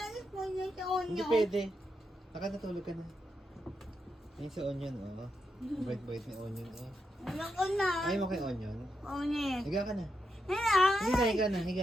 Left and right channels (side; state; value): both; normal; correlation 0.84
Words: mo niya sa Hindi onyo. pwede. Nakatulog ka na. Ayan si onion, oh. Bait-bait ni onion, oh. Ayoko na! Ayaw mo kay onion? Onyo. Higa ka na. Higa! Higa na, higa.